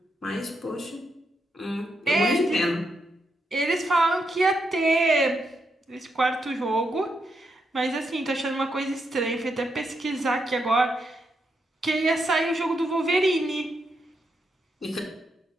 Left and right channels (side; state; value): both; normal; correlation 0.81